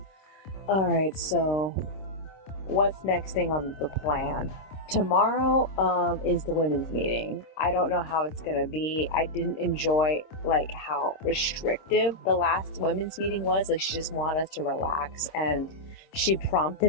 Alright, so what's next thing on the plan? tomorrow is the women's meeting. I don't know how it's gonna be. I didn't enjoy like how restrictive the last women's meeting was. Like she just wanted us to relax, and she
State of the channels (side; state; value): right; late; 26 ms